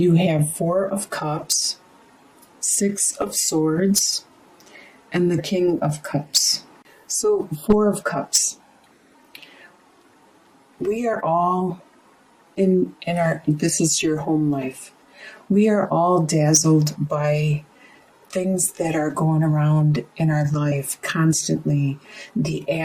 have Four of Cups, Six of Swords, and the King of Cups. So, Four of Cups. We are all this is your home life. We are all dazzled by things that are going around in our life constantly. The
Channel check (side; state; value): both; identical; correlation 1.00